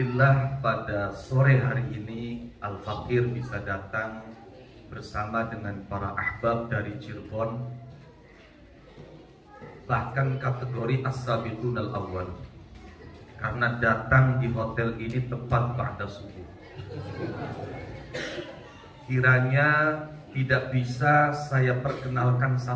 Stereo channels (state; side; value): identical; both; correlation 1.00